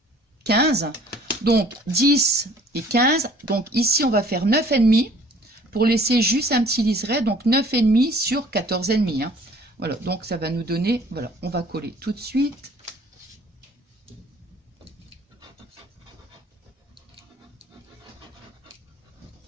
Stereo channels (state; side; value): normal; both; correlation 0.54